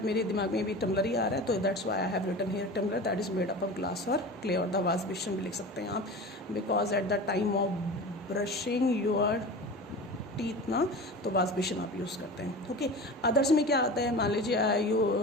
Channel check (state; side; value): normal; both; correlation 0.33